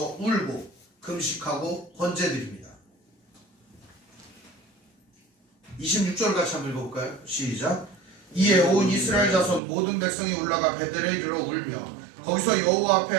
울고 금식하고 헌제 드립니다. 26절 같이 한번 읽어볼까요? 시작. 이에 온 이스라엘 자손 모든 백성이 올라가 베델에 이르러 울며 거기서 여호와 앞에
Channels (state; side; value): drops out; left; at 9.6 s